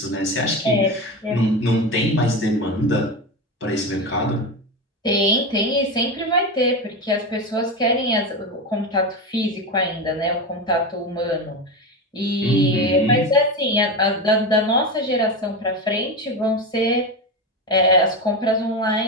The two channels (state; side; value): normal; both; correlation 0.19